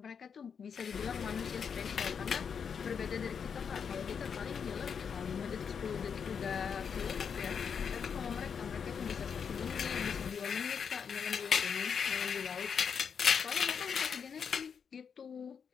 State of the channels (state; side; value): quieter; right; 6.8 dB